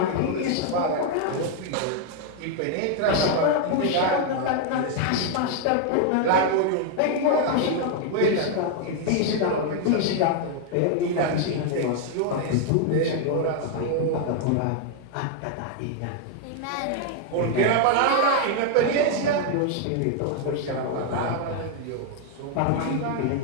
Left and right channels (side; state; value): both; different; correlation 0.00